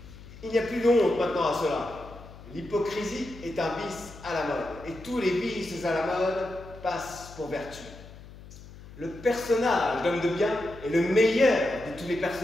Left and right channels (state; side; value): noise; left; hum, 17 dB below the sound